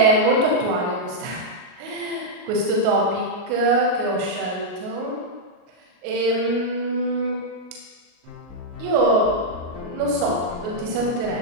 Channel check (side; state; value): left; late; 38 ms